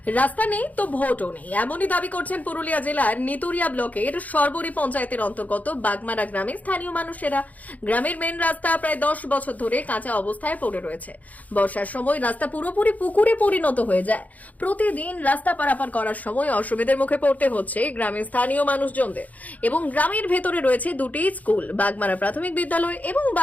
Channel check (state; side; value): late; right; 0.076 ms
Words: রাস্তা নেই তো ভোটও নেই, এমনই দাবি করছেন পুরুলিয়া জেলার নিতুরিয়া ব্লকের সরবরি পঞ্চায়েতের অন্তর্গত বাগমারা গ্রামের স্থানীয় মানুষেরা। গ্রামের মেন রাস্তা প্রায় 10 বছর ধরে কাঁচা অবস্থায় পড়ে রয়েছে। বর্ষার সময় রাস্তা পুরোপুরি পুকুরে পরিণত হয়ে যায়। প্রতিদিন রাস্তা পারাপার করার সময় অসুবিধার মুখে পড়তে হচ্ছে গ্রামের স্থানীয় মানুষজনদের। এবং গ্রামের ভেতরে রয়েছে দুটি স্কুল, বাগমারা প্রাথমিক বিদ্যালয় এবং